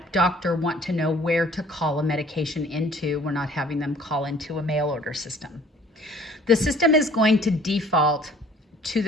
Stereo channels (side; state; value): both; normal; correlation 0.54